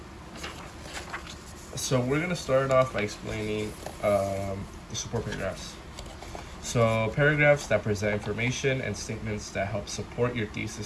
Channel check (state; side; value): identical; both; correlation 1.00